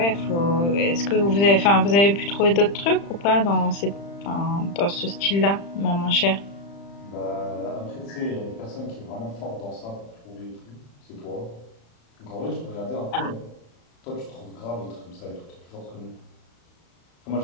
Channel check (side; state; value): right; late; 35 ms